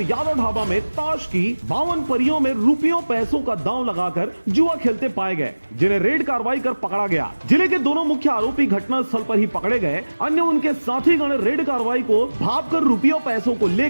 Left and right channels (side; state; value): both; inverted; correlation -1.00